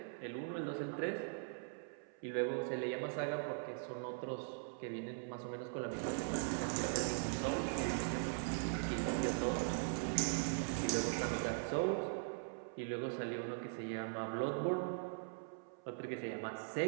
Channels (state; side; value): silent; left; 50 dB below the other